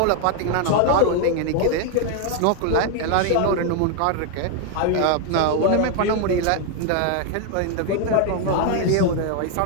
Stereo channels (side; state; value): both; different; correlation 0.00